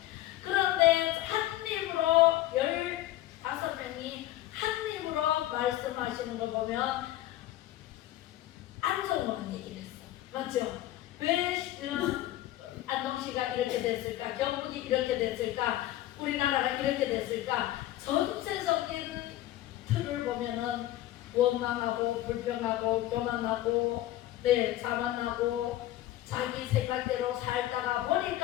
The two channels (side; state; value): right; quieter; 14.7 dB